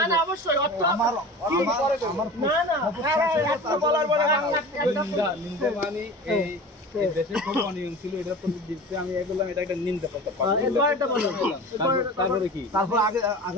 না অবশ্যই অর্থ আমার না না একটা বলার পরে বাংলা নিন্দা নিন্দা মানে এই দেশে খুব অনিয়ম ছিল এটা প্রতিদিন আমি বললাম এটা একটা নিন্দা করতে পারি এবারটা বলো তারপরে কি তারপর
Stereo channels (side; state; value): both; normal; correlation 0.36